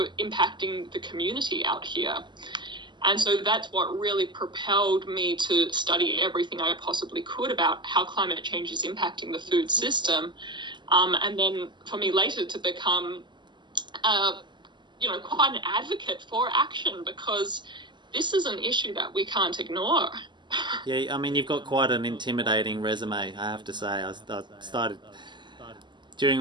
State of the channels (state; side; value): late; left; 0.22 ms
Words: impacting the community out here. And so that's what really propelled me to study everything I possibly could about how climate change is impacting the food system. And then for me later to become, quite an advocate for action, because this is an issue that we can't ignore. Yeah, I mean, you've got quite an intimidating resume, I have to say. I started